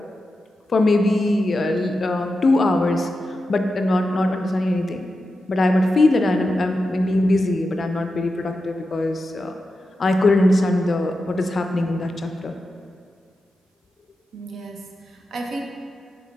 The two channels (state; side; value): normal; both; correlation 0.90